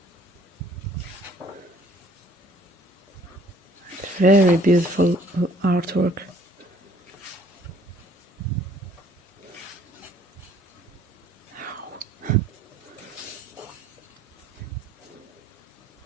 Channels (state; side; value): normal; both; correlation 0.58